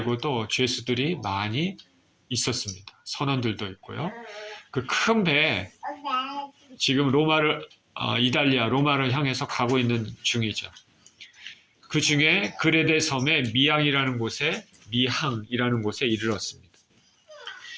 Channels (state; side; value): identical; both; correlation 1.00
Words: 죄수들이 많이 있었습니다. 선원들도 있고요. 그 큰 배에 지금 이달리아, 로마를 향해서 가고 있는 중이죠. 그 중에 그레데 섬의 미항이라는 곳에 이르렀습니다.